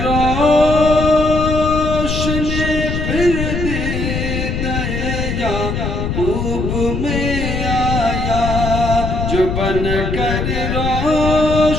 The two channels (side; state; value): left; noise; rumble, 2 dB below the sound